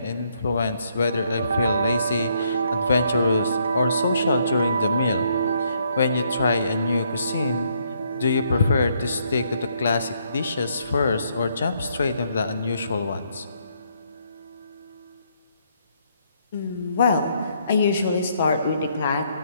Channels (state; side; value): inverted; both; correlation -0.72